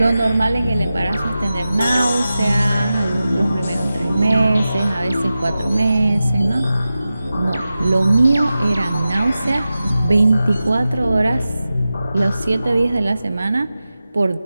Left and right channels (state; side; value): inverted; both; correlation -0.94